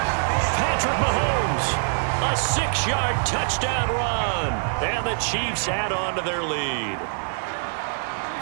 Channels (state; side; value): silent; left; digital silence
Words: Patrick Mahomes, a 6-yard touchdown run. And the Chiefs add on to their lead.